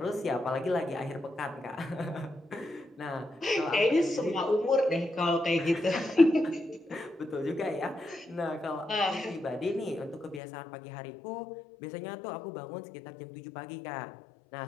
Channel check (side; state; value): right; drops out; at 10.4 s